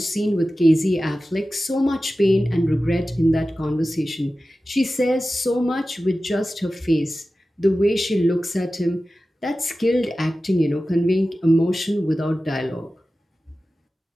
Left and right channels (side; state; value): both; normal; correlation 0.95